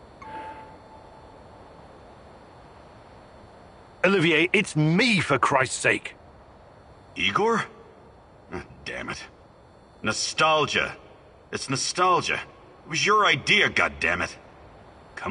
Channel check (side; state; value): both; identical; correlation 1.00